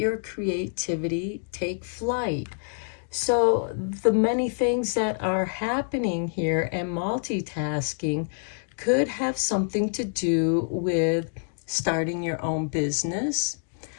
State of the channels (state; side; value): silent; right; digital silence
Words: creativity take flight. So the many things that are happening here and multitasking could have something to do with starting your own business,